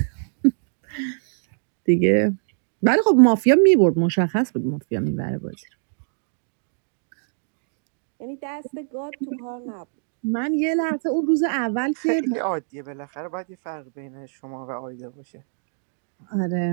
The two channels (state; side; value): silent; left; digital silence